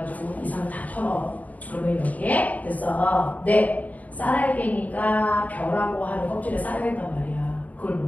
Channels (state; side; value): late; right; 0.074 ms